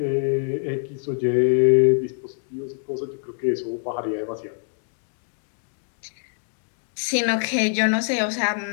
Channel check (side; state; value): right; silent; 61 dB below the other